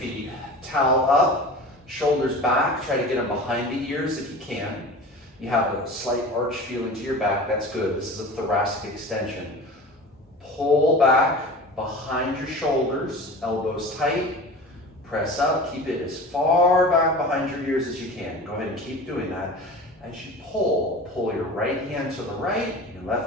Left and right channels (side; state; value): both; normal; correlation 0.36